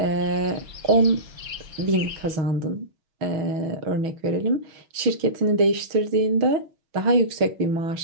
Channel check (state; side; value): late; left; 6.3 ms